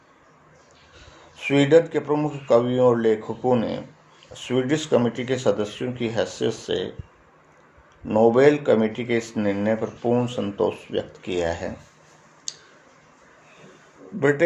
स्वीडन के प्रमुख कवियों और लेखकों ने स्वीडिश कमेटी के सदस्यों की हैसियत से नोबेल कमेटी के इस निर्णय पर पूर्ण संतोष व्यक्त किया है।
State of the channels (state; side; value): identical; both; correlation 1.00